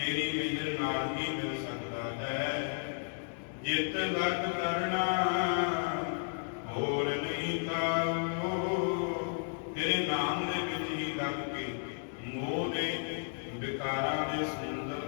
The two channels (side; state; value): right; silent; digital silence